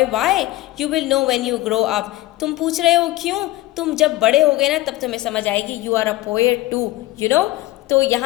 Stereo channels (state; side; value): quieter; right; 17.4 dB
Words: why, you will know when you grow up, तुम पूछ रहे हो क्यों, तुम जब बड़े हो गए ना तब तुम्हें समझ आएगी। You are a poet too, you know. तो